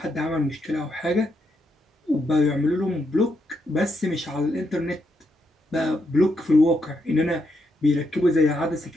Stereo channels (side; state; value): both; normal; correlation 0.80